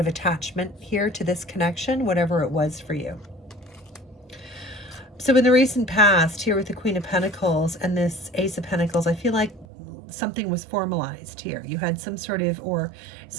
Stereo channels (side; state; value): left; drops out; at 9.7 s